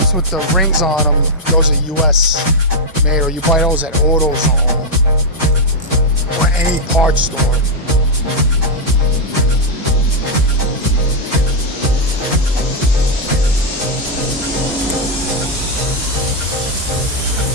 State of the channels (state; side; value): normal; both; correlation -0.02